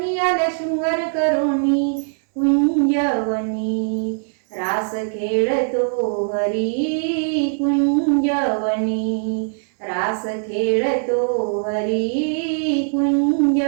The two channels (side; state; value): left; silent; 65 dB below the other